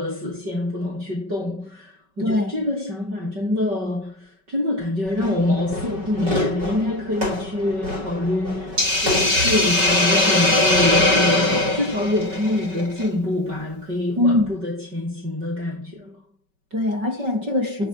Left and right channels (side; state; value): left; late; 5.2 ms